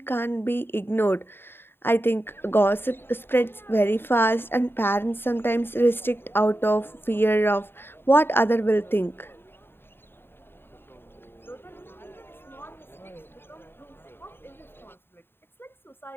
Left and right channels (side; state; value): right; late; 0.11 ms